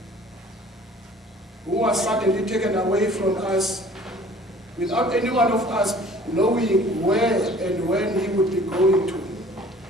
who was suddenly taken away from us without any one of us knowing where and when he would be going to.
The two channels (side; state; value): both; normal; correlation 0.50